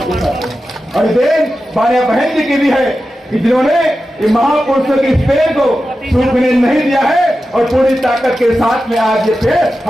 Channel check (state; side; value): normal; both; correlation 0.92